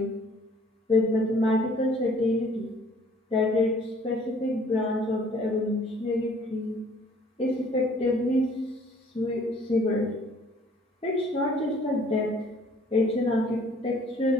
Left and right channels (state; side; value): normal; both; correlation 0.57